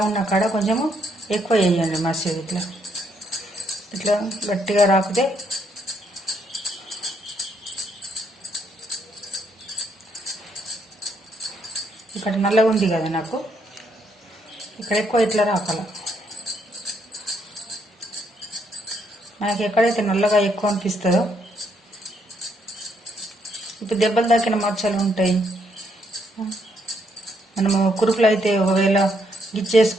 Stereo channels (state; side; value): normal; both; correlation 0.73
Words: ఉన్న కాడ కొంచెము ఎక్కువ వేయండి మసాలా. ఇట్లా ఇట్లా గట్టిగా రాకుతే ఇక్కడ నల్లగా ఉంది కదా నాకు, ఇక్కడ ఎక్కువ ఇట్లా రాకాల. మనకి ఎక్కడైతే నల్లగా ఎక్కువ అనిపిస్తుందో, ఇప్పుడు దెబ్బలు తాకిన మచ్చలు ఉంటాయి. మనము కురుకులు అయితే ఒకవేళ